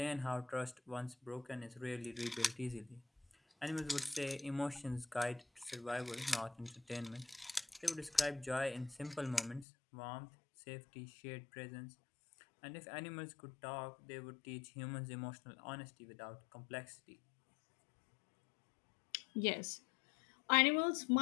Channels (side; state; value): right; drops out; at 9.7 s